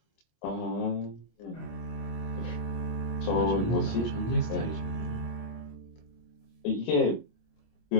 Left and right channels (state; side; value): late; right; 25 ms